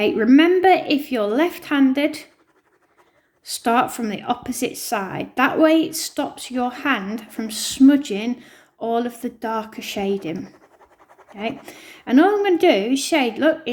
remember, if you're left-handed, start from the opposite side. That way it stops your hand from smudging all of the darker shading. Okay, and all I'm going to do is shade, look,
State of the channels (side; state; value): both; identical; correlation 1.00